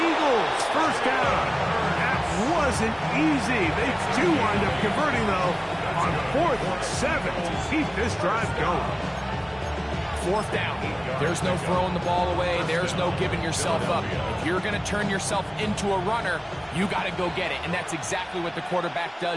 Eagles 1st down. That wasn't easy. They do wind up converting, though, on 4th and 7 to keep this drive going. 4th down. There's no throwing the ball away. There's no giving yourself up. If you're going to turn yourself into a runner, you got to go get it. And that's exactly what the quarterback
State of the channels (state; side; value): identical; both; correlation 1.00